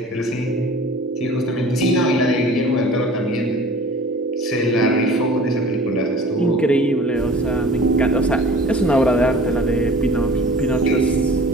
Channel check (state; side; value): normal; both; correlation 0.45